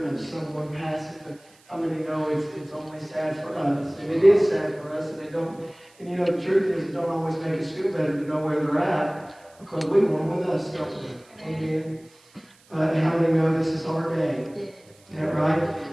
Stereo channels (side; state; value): right; noise; hiss, 29 dB below the sound